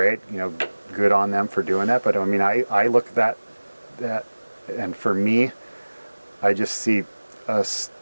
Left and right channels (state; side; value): inverted; both; correlation -1.00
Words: you know, good on them for doing that. But I mean, I look at that, and for me, I just see a